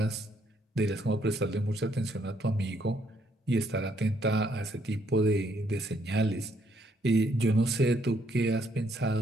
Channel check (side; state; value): both; normal; correlation 0.71